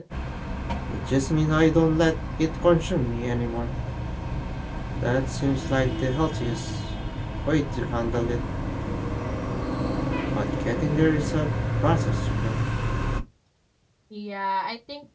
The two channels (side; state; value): both; identical; correlation 1.00